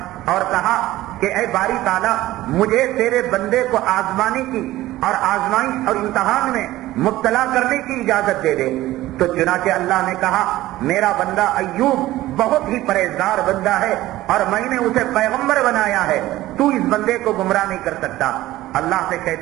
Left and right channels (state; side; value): quieter; left; 16.2 dB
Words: اور کہا کہ اے باری تعالیٰ مجھے تیرے بندے کو آزمانے کی اور آزمائش اور امتحان میں مبتلا کرنے کی اجازت دے دے۔ تو چنانچہ اللہ نے کہا میرا بندہ ایوب بہت ہی پرہیزگار بندہ ہے اور میں نے اسے پیغمبر بنایا ہے، تو اس بندے کو گمراہ نہیں کر سکتا۔ اللہ سے